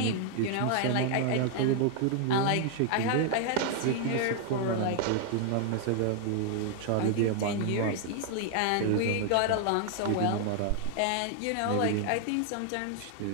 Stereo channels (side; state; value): both; different; correlation 0.00